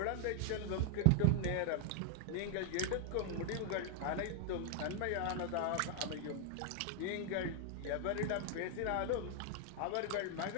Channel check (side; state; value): both; different; correlation 0.00